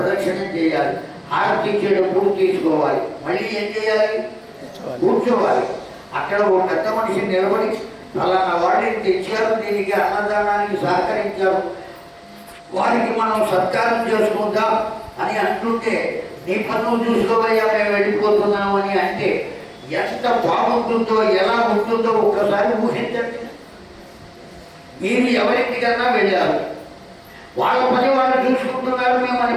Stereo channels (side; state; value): both; identical; correlation 1.00